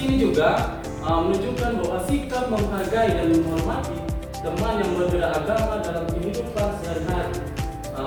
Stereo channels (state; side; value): identical; both; correlation 1.00